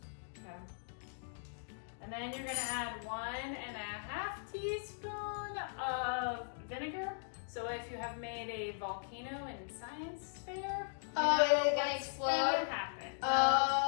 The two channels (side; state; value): right; silent; digital silence